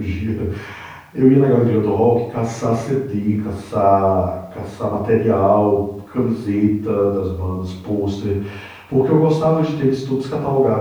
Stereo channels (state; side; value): identical; both; correlation 1.00